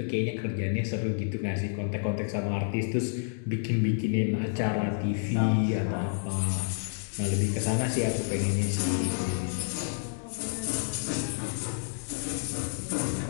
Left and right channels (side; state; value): right; silent; digital silence